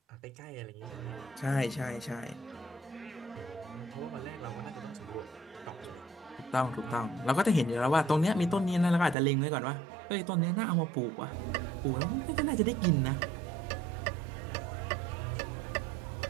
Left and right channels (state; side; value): drops out; left; at 9.2 s